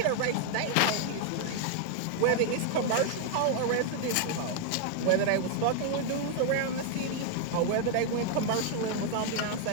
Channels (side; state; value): both; different; correlation 0.00